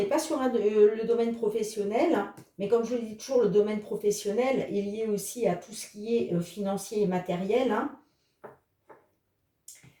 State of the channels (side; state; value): both; identical; correlation 1.00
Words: pas sur le domaine professionnel, hein, mais comme je le dis toujours, le domaine professionnel est lié aussi à tout ce qui est financier et matériel, hein.